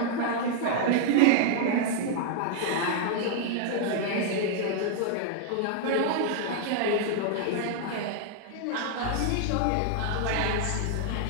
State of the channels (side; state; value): both; different; correlation 0.00